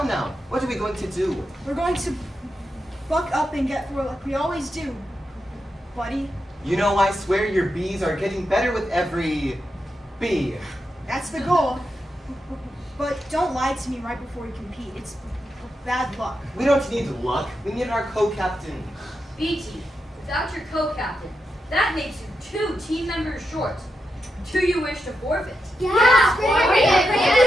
now. What are we going to do? We're going to buck up and get through like we always do, buddy. You know, I swear your B's are getting better with every B. That's the goal. But don't lie to me right before we compete. It's bad luck. We don't need luck. We need our co-captain. B team, without your co-captain, that makes you 2 team members short. Do you wish to forfeit? Yeah, bring it, bring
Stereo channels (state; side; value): normal; both; correlation 0.87